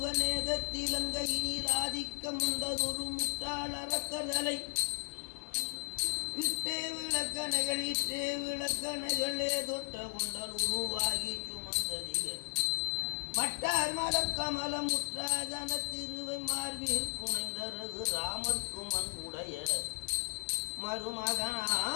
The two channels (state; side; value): silent; right; digital silence